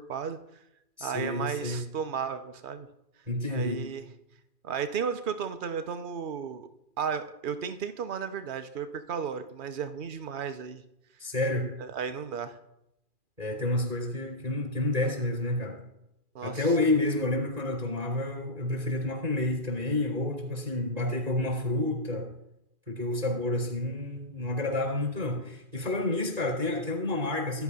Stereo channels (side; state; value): left; late; 2.4 ms